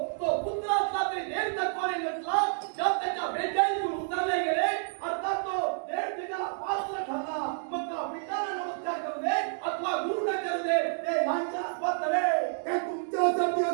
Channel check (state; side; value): silent; left; digital silence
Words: तो पुत्र असला तरी देव तत्वाने नसला जर त्याच्या बेचाळीतून उतरले गेले अर्थात तो देव त्याला पात्र ठरला मग त्या पिताला नमस्कार करू दे अथवा गुरुला करू दे ते लांछनास्पद नव्हे हे तुमच्यासाठी